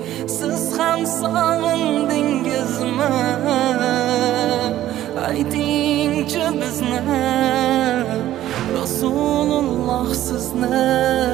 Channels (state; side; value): quieter; left; 13.4 dB